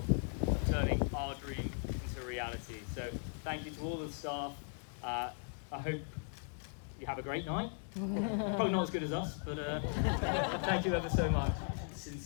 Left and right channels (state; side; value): silent; right; 53 dB below the other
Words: of turning our dream into a reality. So thank you to all the staff. I hope you have a great night. Probably not as good as us, but thank you ever so much.